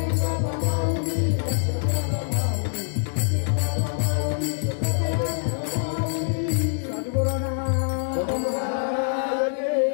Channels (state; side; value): silent; right; 62 dB below the other